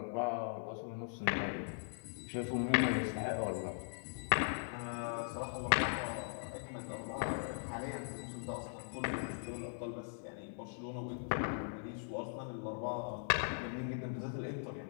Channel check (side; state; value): right; silent; 51 dB below the other